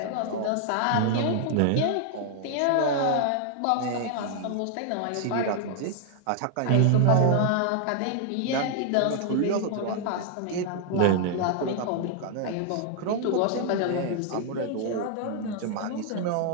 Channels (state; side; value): different; both; correlation 0.00